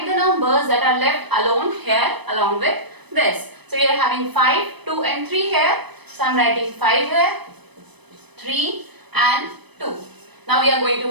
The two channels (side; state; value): left; late; 0.99 ms